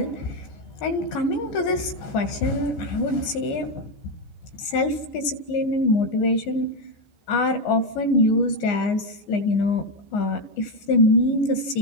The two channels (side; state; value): right; late; 15 ms